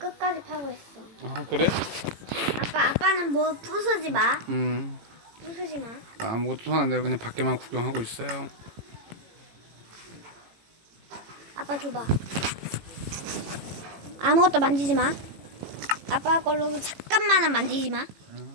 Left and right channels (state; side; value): late; left; 18 ms